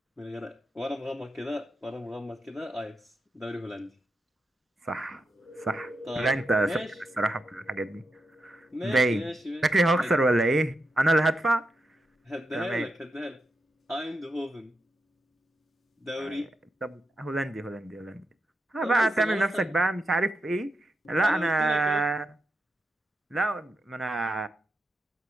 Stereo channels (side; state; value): both; normal; correlation 0.86